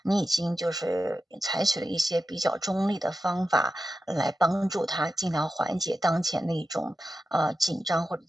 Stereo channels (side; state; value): both; normal; correlation 0.91